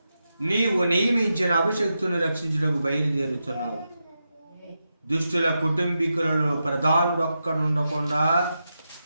నీవు నియమించిన అభిషక్తుని రక్షించుటకు బయలుదేరుచున్నావు. దుష్టుల కుటుంబీకులలో ప్రధానుడొక్కడుండకుండా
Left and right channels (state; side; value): inverted; both; correlation -0.88